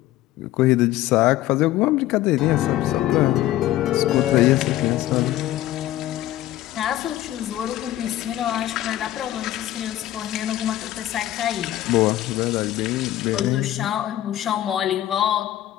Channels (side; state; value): right; quieter; 14.3 dB